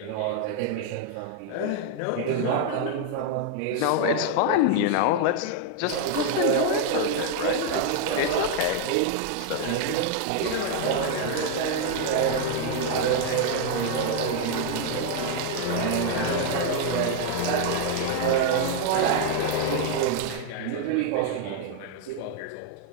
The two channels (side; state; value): both; different; correlation 0.00